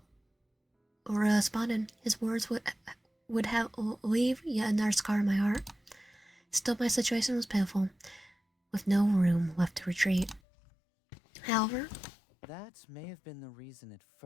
Uria responded, his words would have leave yet another scar in my heart. Still, my situation was pitiful, with no room left to retreat. However, that may have been the reason at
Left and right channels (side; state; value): right; drops out; at 10.4 s